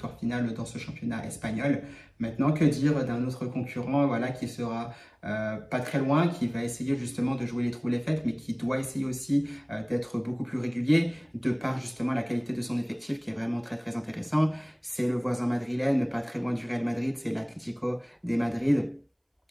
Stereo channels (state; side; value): identical; both; correlation 1.00